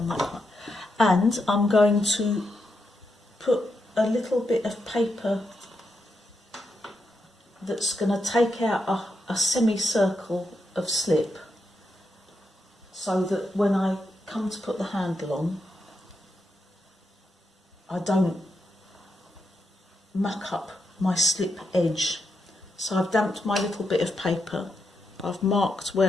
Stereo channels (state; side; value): normal; both; correlation 0.84